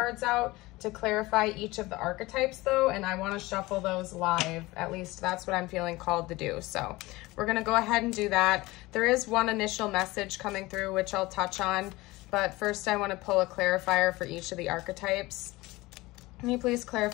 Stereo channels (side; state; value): right; quieter; 20.5 dB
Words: out to clarify each of the archetypes though, and I want to shuffle those live. At least that's what I'm feeling called to do. So we're going to go ahead and do that. There is one initial message coming through which I'll touch on, but first I want to pull a clarifier for each of the archetypes. Can you please